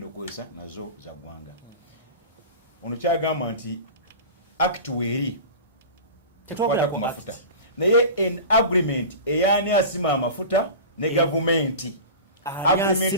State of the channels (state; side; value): inverted; both; correlation -0.33